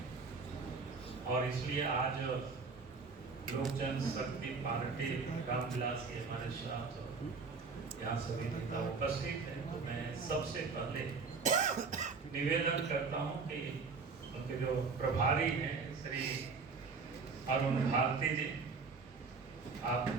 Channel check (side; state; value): left; quieter; 4.7 dB